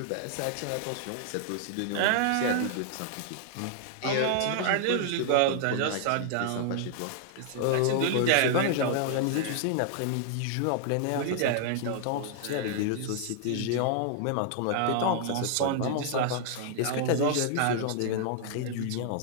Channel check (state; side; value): different; both; correlation -0.01